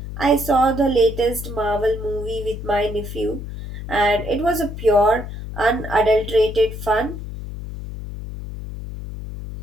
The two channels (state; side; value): noise; left; hum, 9 dB below the sound